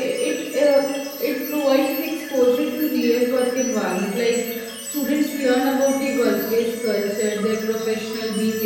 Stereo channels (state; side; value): identical; both; correlation 1.00